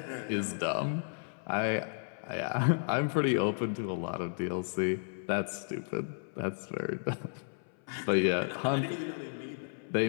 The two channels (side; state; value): right; silent; 56 dB below the other